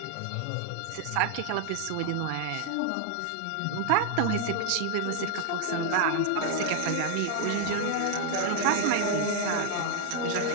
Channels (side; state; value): both; different; correlation 0.00